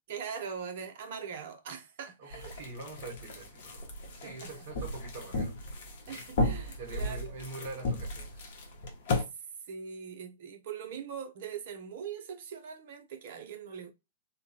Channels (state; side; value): inverted; both; correlation -0.44